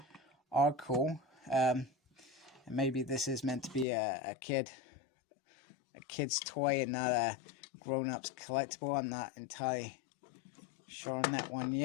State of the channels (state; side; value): drops out; right; at 3.9 s